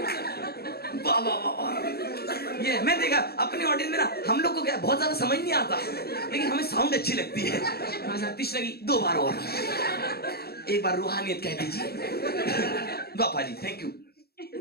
वाह वाह वाह वाह। ये मैं देखा अपनी ऑडियंस में ना, हम लोग को क्या बहुत ज्यादा समझ नहीं आता, लेकिन हमें साउंड अच्छी लगती है। कृष्ण की 2 बार और, एक बार रूहानियत कह दीजिए। बापा जी थैंक यू।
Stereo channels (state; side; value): late; right; 0.46 ms